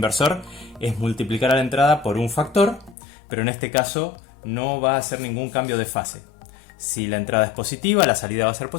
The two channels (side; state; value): right; drops out; at 3.0 s